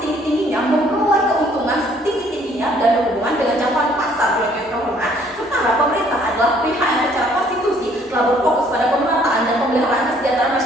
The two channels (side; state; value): both; normal; correlation 0.62